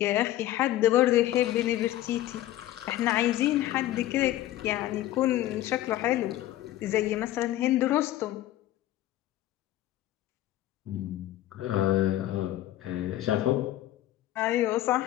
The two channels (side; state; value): right; quieter; 14.4 dB